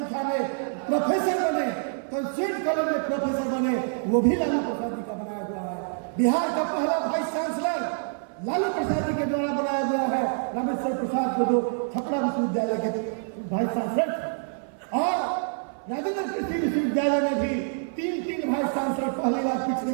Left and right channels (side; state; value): left; silent; 55 dB below the other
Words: में प्रोफेसर बने, कंस्टिट्यूट कॉलेज में प्रोफेसर बने, वो भी लालू प्रसाद जी का बनाया हुआ है। बिहार का पहला वाइस चांसलर लालू प्रसाद जी के द्वारा बनाया गया है, रामेश्वर प्रसाद को, जो छपरा विश्वविद्यालय के वाइस चांसलर थे। और राजेंद्र कृषि विश्वविद्यालय में भी 3 वाइस चांसलर पहली बार